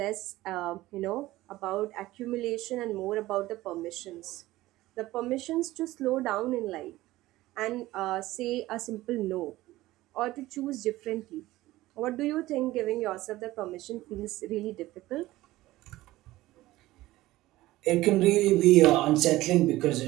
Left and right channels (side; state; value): left; quieter; 17.2 dB